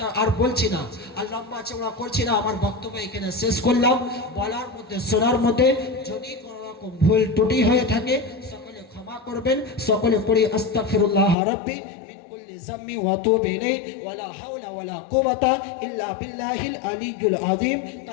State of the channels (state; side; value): drops out; right; at 11.4 s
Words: আর বলছি না, আর লম্বা চওড়া করছি না। আমার বক্তব্য এখানে শেষ করলাম। বলার মধ্যে শোনার মধ্যে যদি কোনো রকম ভুল ত্রুটি হয়ে থাকে সকলে ক্ষমা করবেন। সকলে পড়ি আস্তাগফিরুল্লাহ রাব্বি মিন কুল্লি যাম্মি ওয়া তুবু ইলাইহি ওয়ালা হাওলা ওয়ালা কুওয়াতা ইল্লা বিল্লাহিল আলিয়্যুল আযীম।